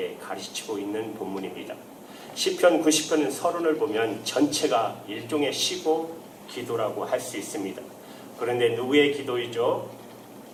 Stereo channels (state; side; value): identical; both; correlation 1.00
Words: 가르치고 있는 본문입니다. 시편 90편은 서론을 보면 전체가 일종의 시고 기도라고 할 수 있습니다. 그런데 누구의 기도이죠?